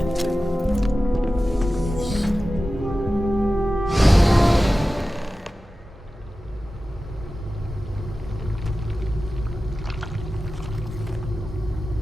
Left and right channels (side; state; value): both; normal; correlation 0.94